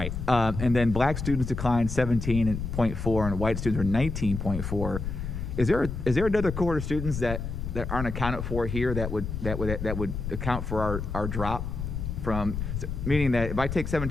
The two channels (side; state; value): left; noise; rumble, 5 dB below the sound